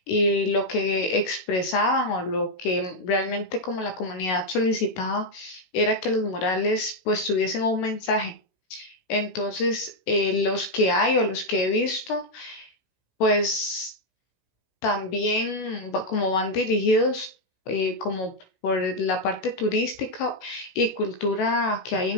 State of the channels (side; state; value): right; late; 16 ms